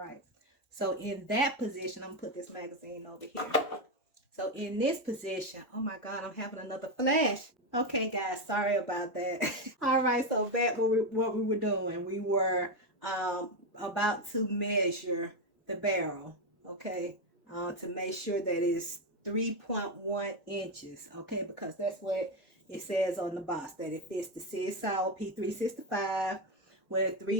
So in that position, I'm going to put this magazine over here. So in this position, oh my God, I'm having another flash. Okay, guys, sorry about that. All right, so back what we were doing. We were about to measure the barrel, okay, to make sure that it's 3.1 inches, okay, because that's what it says on the box, that it fits the CSL P365 with a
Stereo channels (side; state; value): both; normal; correlation 0.09